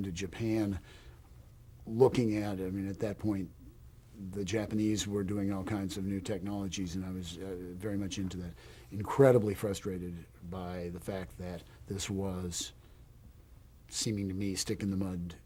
to Japan looking at it. I mean, at that point, the Japanese were doing all kinds of new technologies, and I was very much into that. Incredibly frustrated by the fact that this was seeming to me stick in the mud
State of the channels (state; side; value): identical; both; correlation 1.00